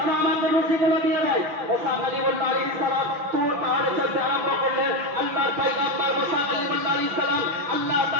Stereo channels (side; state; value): left; late; 5.9 ms